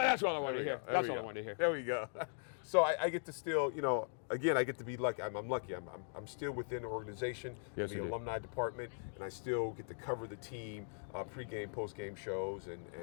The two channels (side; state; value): right; silent; digital silence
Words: all I wanted to hear. That's all I wanted to hear. There we go. So I get to still, again, I get to be lucky. I'm lucky. I'm still within the organization, in the alumni department, and I still get to cover the team, pregame, postgame shows, and